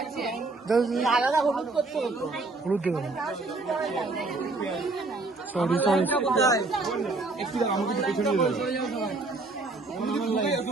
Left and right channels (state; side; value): quieter; left; 3.4 dB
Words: আলাদা হলুদ করতে হতো। একটু দাঁড়াও, আমাকে একটু পেছনে নিয়ে যাও।